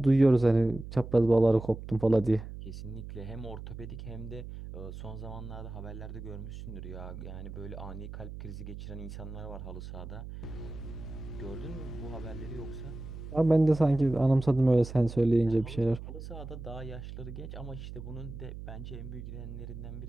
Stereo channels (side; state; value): right; noise; hum, 10 dB below the sound